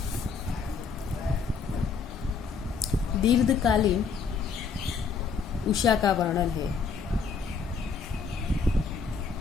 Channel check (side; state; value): right; quieter; 5.5 dB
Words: दीर्घकालीन उषा का वर्णन है।